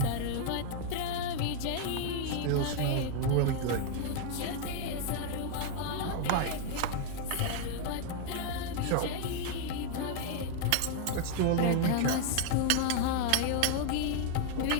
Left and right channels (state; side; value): different; both; correlation 0.00